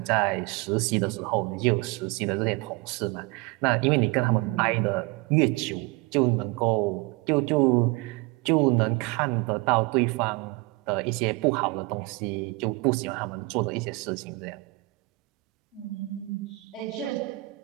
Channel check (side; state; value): left; quieter; 24.1 dB